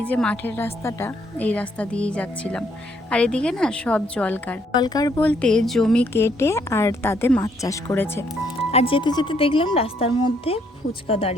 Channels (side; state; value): both; normal; correlation 0.70